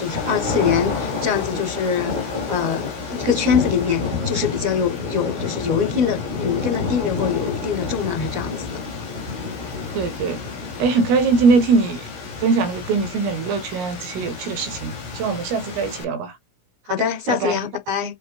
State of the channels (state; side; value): late; left; 17 ms